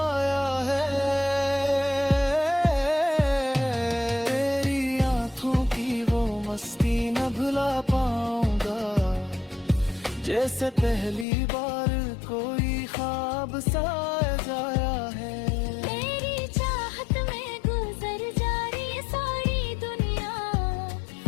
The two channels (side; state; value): right; drops out; at 11.2 s